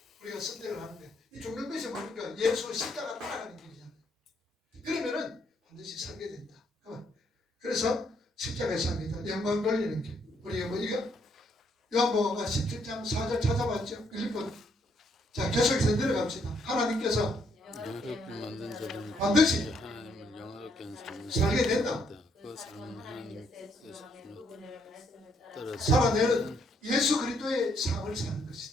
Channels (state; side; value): normal; both; correlation 0.71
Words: 우리가 선택을 하는데 이 죽는 예수 십자가 따라가는 길이잖아요. 그러면은 반드시 살게 된다. 그래서 십자가에 삽니다. 영광 돌리는 길. 우리 뭐 이거 요한복음가 17장 4절 찾아봤죠? 1번. 자, 계속해서 내려갑시다. 하나님께서 영화롭게 만든 자들은 반드시 하나님을 영화롭게 하는 삶을 살게 된다. 그 삶은 하나님께서 따라 살아내는 예수 그리스도의 삶을 사는